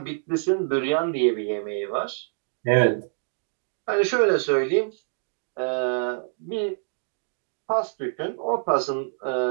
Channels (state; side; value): silent; left; digital silence